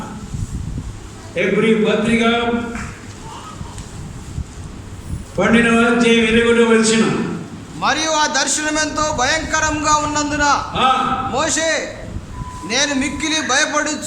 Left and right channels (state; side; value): identical; both; correlation 1.00